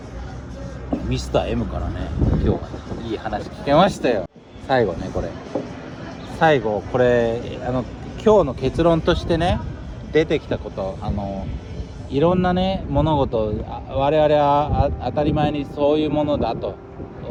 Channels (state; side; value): identical; both; correlation 1.00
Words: ミスター M からね今日はいい話聞けましたよ。最後これ今日の結論としてね出てきたこと、いろんなね物事我々は当たり前にそういうものだと